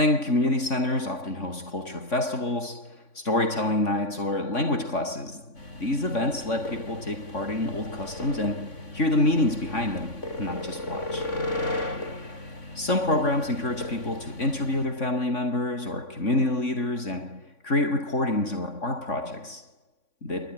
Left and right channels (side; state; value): right; late; 3.5 ms